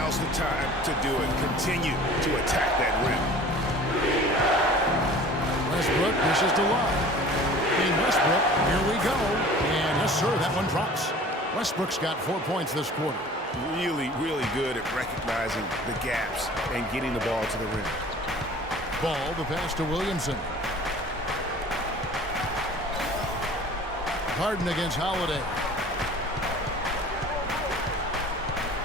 the time to do it. Continue to attack that rim. Westbrook pushes to Love. And Westbrook, here we go. And yes, sir, that one drops. Westbrook's got 4 points this quarter. Really, really good at recognizing the gaps and getting the ball to the rim. Ball, the pass to Williamson. Harden against Holiday.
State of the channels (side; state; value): both; normal; correlation 0.45